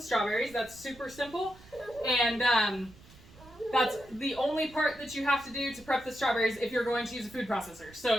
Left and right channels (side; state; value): right; noise; rumble, 22 dB below the sound